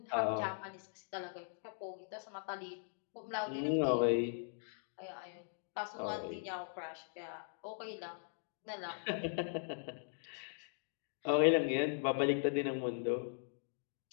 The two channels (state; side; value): silent; right; digital silence